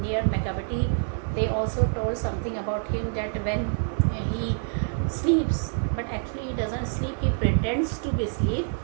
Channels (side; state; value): left; silent; 61 dB below the other